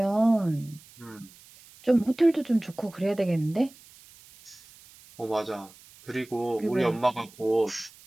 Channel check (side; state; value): right; noise; hiss, 24 dB below the sound